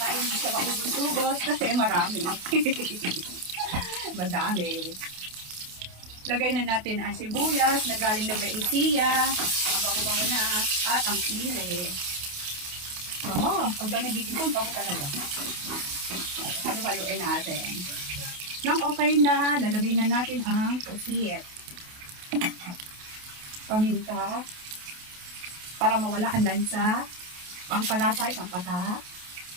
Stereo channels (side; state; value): left; late; 28 ms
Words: Hindi siya maubos-ubos kasi marami. Madami. Lagay na natin ang sibuyas na galing na Baetia. Ang bango-bango na. At ang sili. Pag nagigipon, bango talaga. Halo-haloin natin. Nang okay na, lalagay na natin ang pusit. Paminta. Para mawala ang lansa. Pangpalasa, isang patak.